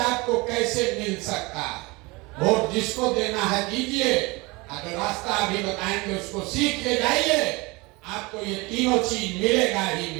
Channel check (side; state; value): left; quieter; 24.7 dB